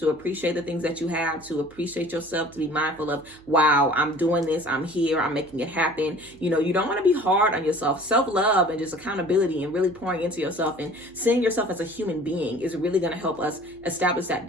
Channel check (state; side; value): noise; right; hum, 26 dB below the sound